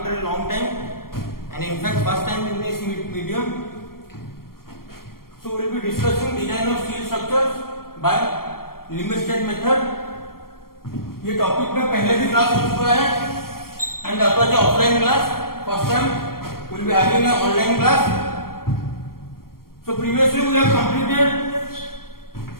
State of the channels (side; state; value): right; late; 0.93 ms